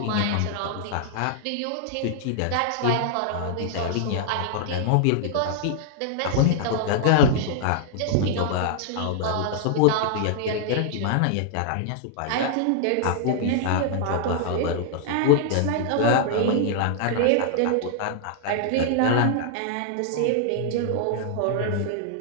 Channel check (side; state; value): both; different; correlation -0.01